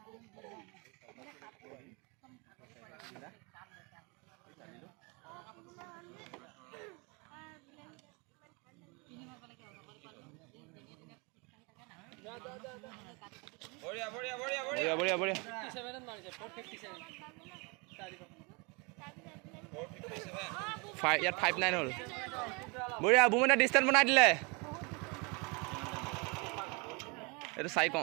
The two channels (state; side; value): quieter; left; 30.2 dB